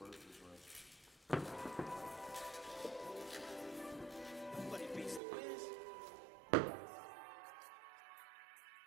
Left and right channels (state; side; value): drops out; left; at 5.2 s